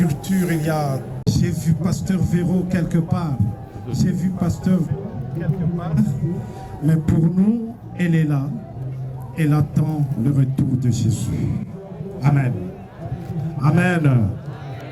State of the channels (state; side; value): identical; both; correlation 1.00